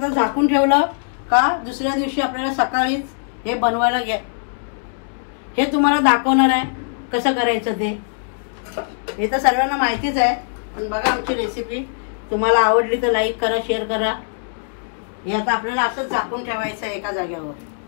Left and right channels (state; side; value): silent; right; 65 dB below the other